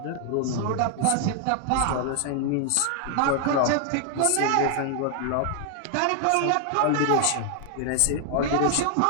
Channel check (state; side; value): different; both; correlation 0.00